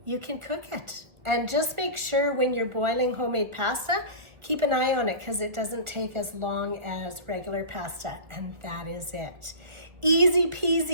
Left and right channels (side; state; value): left; late; 1.4 ms